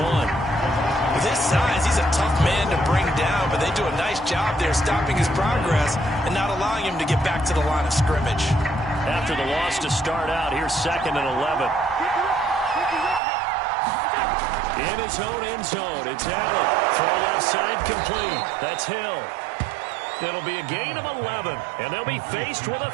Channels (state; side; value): drops out; left; at 13.2 s